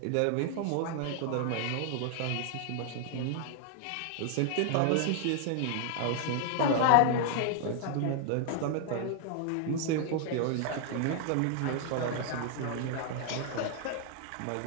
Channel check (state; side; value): different; both; correlation 0.00